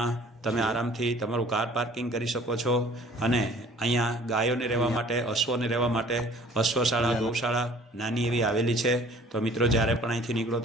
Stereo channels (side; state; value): both; normal; correlation 0.51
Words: તમે આરામથી તમારું કાર પાર્કિંગ કરી શકો છો. અને અહીંયા ગાયોને રહેવા માટે, અશ્વોને રહેવા માટે અશ્વશાળા, ગૌશાળા નાની એવી આવેલી છે. તો મિત્રો, જ્યારે પણ અહીંથી નીકળો